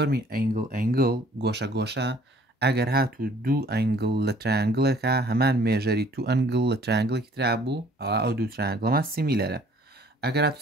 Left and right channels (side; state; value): both; normal; correlation 0.56